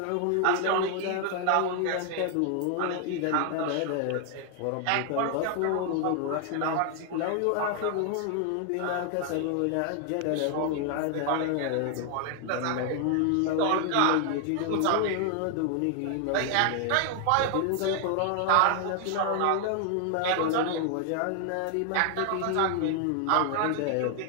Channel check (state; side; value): different; both; correlation 0.00